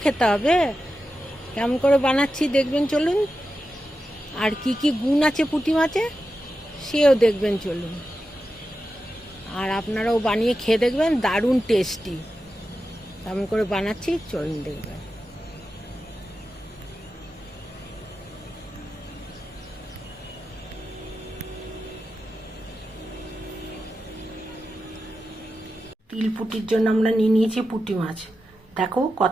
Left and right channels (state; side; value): normal; both; correlation 0.91